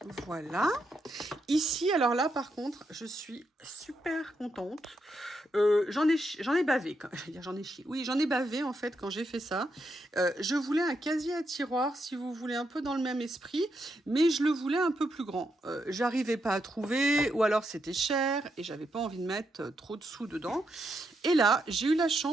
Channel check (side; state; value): both; normal; correlation 0.81